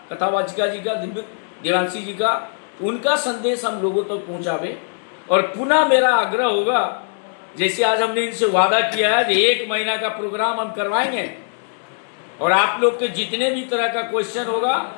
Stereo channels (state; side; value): silent; right; 63 dB below the other